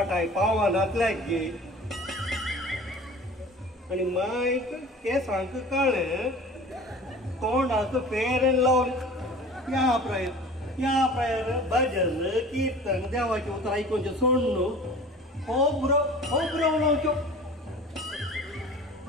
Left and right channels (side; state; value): both; normal; correlation 0.42